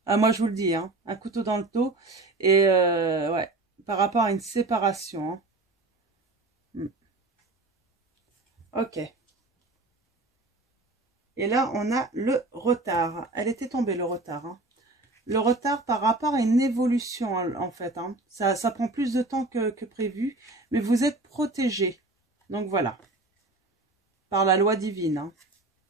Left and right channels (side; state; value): left; quieter; 3.1 dB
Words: Ah, moi, je vous le dis. Hein. Un couteau dans le dos. Et ouais. Par rapport à une séparation. Hein. Ok. Et là, on a le retard. Elle était tombée, le retard. Hein. Le retard par rapport à une évolution, en fait. Hein. Ça prend plus de temps que prévu, mais vous êtes protégé. Donc, voilà. Par la loi divine, hein,